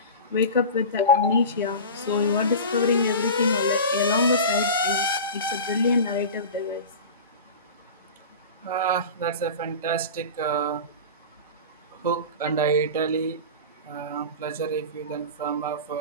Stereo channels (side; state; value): both; inverted; correlation -0.31